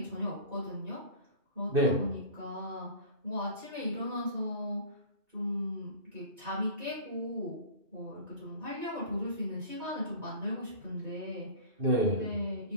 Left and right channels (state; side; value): late; left; 2.6 ms